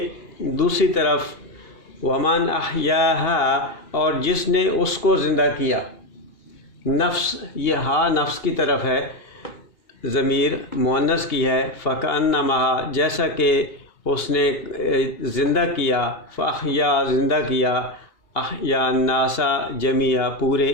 دوسری طرف ومن احیاہا، اور جس نے اس کو زندہ کیا، نفس، یہ ہا نفس کی طرف ہے، ضمیر مؤنث کی ہے، فکأنما، جیسا کہ اس نے زندہ کیا، فاحیا، زندہ کیا، احیا الناس جمیعا، پورے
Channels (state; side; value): late; right; 2.8 ms